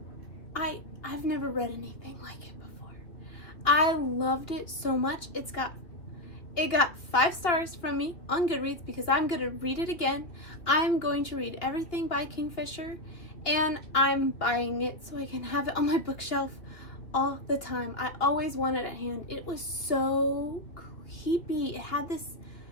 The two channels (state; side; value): late; right; 2.9 ms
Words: I've never read anything like it before. I loved it so much. It got 5 stars from me on Goodreads because I'm going to read it again. I'm going to read everything by Kingfisher, and I'm buying it so I can have it on my bookshelf all the time. I always want it at hand. It was so creepy. It had this